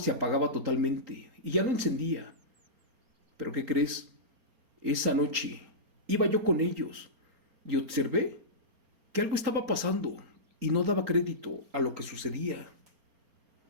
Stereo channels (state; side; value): late; left; 4.3 ms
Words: apagaba totalmente y ya no encendía. Pero ¿qué crees? Esa noche iba yo con ellos y observé que algo estaba pasando y no daba crédito a lo que sucedía,